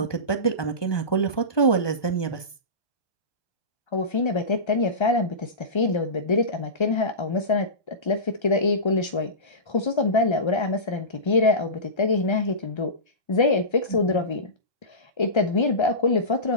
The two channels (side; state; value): right; late; 1.2 ms